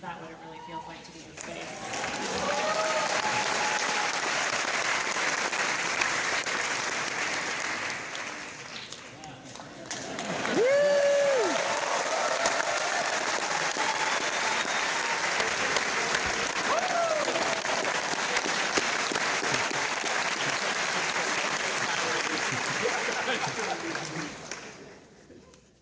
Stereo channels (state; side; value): identical; both; correlation 1.00